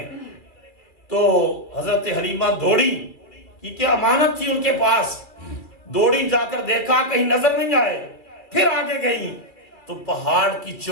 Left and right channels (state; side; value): late; right; 2.3 ms